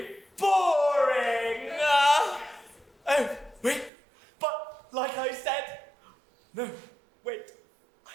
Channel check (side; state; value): left; drops out; at 3.9 s